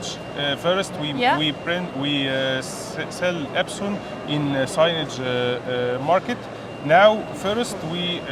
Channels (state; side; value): identical; both; correlation 1.00